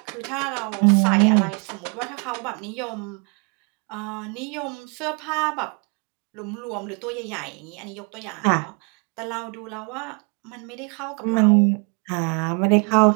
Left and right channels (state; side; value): quieter; left; 35.6 dB